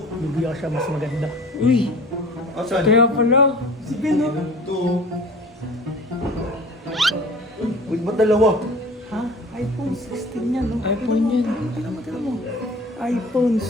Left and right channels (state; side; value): normal; both; correlation 0.43